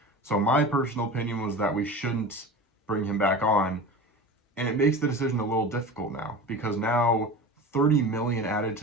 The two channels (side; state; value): both; normal; correlation 0.32